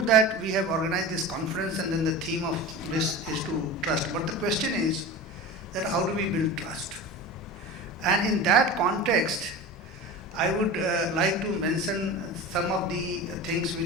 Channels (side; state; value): both; normal; correlation 0.30